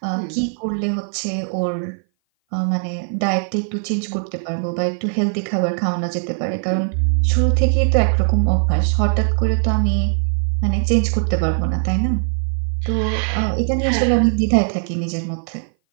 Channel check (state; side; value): silent; left; 58 dB below the other